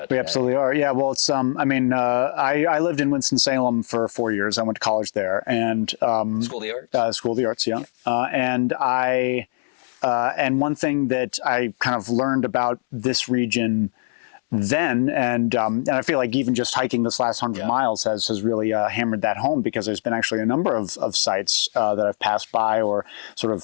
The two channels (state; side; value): silent; right; 62 dB below the other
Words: today. We absolutely are. Yeah. Well, it's I lived in Winston-Salem for 4 years. I went to college there, and School of the Arts. School of the Arts. Yeah. And one thing that I kind of learned about this region then, and I feel like even just hiking this last 100 miles has really hammered that home, because there's been actually a number of sites that I've passed by or sort